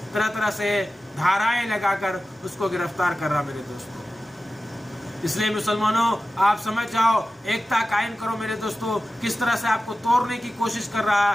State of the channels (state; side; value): normal; both; correlation 0.95